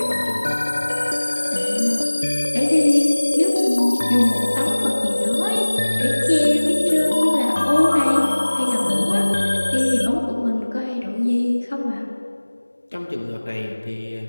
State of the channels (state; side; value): inverted; both; correlation -1.00